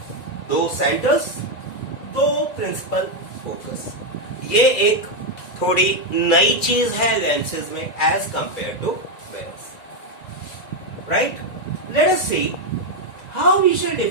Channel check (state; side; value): late; right; 1.9 ms